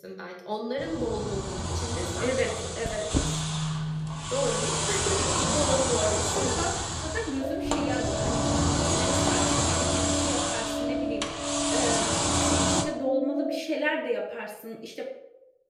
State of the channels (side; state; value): both; identical; correlation 1.00